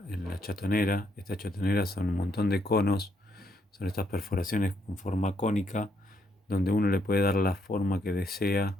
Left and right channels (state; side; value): normal; both; correlation 0.74